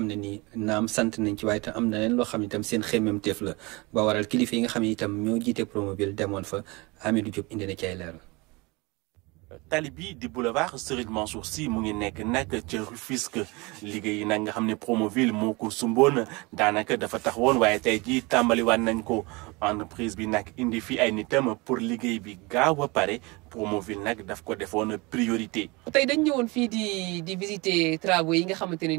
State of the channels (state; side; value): quieter; left; 25.7 dB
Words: ne nii naam sant nañ ci waaye itam am na leen loo xam ne itam seen xemmemteef la ba waral kilifa yi nga xam ne itam ñoo jiite Promoville demoon fa Hamidou Diop indi na ci ay leeral. tali bi di boulevard Serigne Mansour Sy mu ngi nekk nag ca Rufisque liggéey yi nag nga xam ne Promoville moo ko sumboon daanaka dafa taxawoon waaye tey jii tàmbaliwaat nañ ko entreprise bi nag indi fi ay nitam pour liggéey bi gaaw a pare Promoville nag daf ko defoon priorité. tey dañ ñëwoon fii di visiter travaux yi nga xamante ne